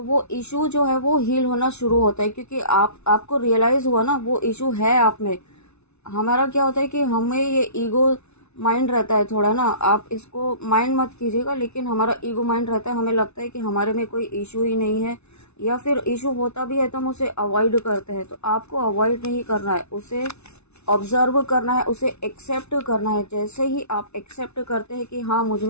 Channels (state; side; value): late; right; 0.81 ms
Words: वो इशू जो है वो हील होना शुरू होता है, क्योंकि आपको रियलाइज़ हुआ ना वो इशू है आप में। हमारा क्या होता है कि हमें ये ईगो माइंड रहता है थोड़ा ना, आप इसको माइंड मत कीजिएगा, लेकिन हमारा ईगो माइंड रहता है, हमें लगता है कि हमारे में कोई इशू ही नहीं है, या फिर इशू होता भी है तो हम उसे अवॉइड करते हैं। तो आपको अवॉइड नहीं करना है, उसे ऑब्जर्व करना है, उसे एक्सेप्ट करना है। जैसे ही आप एक्सेप्ट करते हैं कि हाँ मुझ